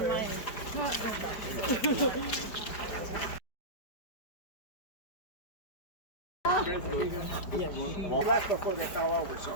Well, that's before they fell over, so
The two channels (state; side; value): late; right; 5.0 ms